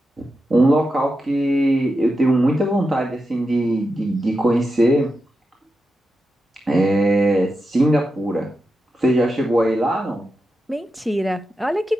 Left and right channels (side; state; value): both; normal; correlation 0.89